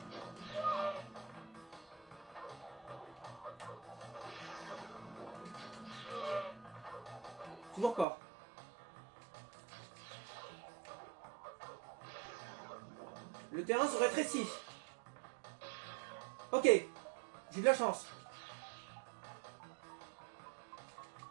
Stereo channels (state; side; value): drops out; left; at 8.1 s